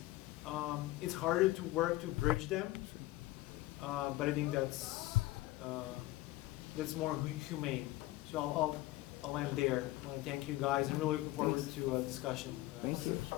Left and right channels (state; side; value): quieter; right; 17.5 dB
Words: It's harder to work to bridge them, but I think that's more humane. So I'll end there. I want to thank you guys, and really looking forward to a discussion. Thank you.